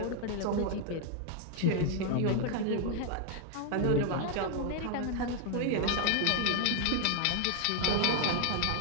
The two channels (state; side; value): different; both; correlation 0.00